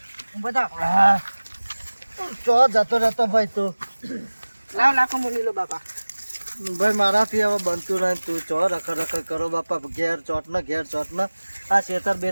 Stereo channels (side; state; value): both; inverted; correlation -1.00